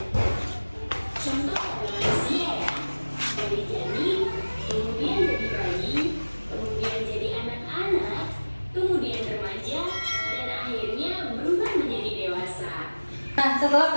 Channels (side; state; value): both; inverted; correlation -1.00